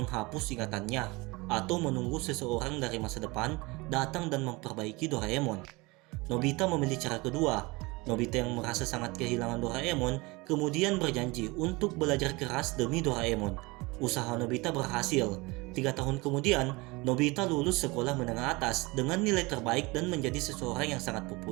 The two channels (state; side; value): quieter; left; 24.3 dB